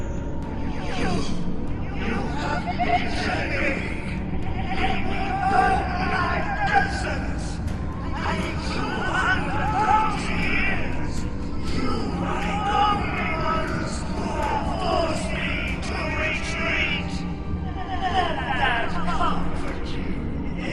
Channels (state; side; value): identical; both; correlation 1.00